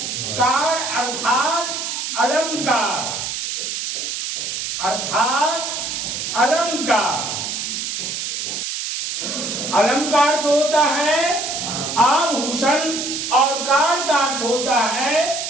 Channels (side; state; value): right; noise; hiss, 3 dB below the sound